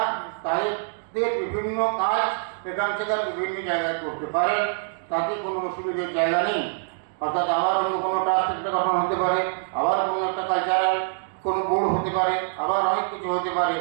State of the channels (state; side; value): silent; left; digital silence